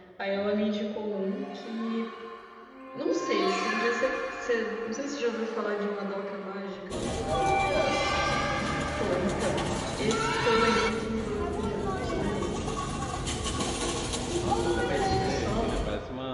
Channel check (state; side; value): identical; both; correlation 1.00